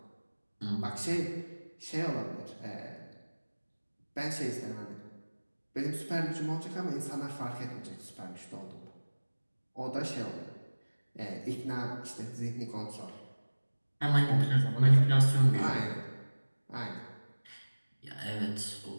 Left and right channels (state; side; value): inverted; both; correlation -1.00